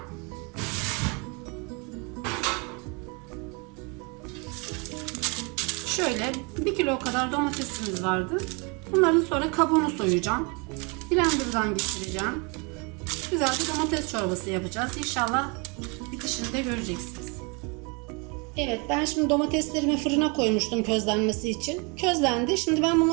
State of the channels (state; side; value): quieter; left; 31.5 dB